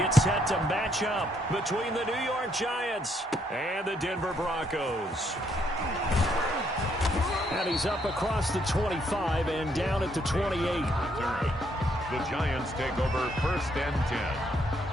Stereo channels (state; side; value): normal; both; correlation 0.72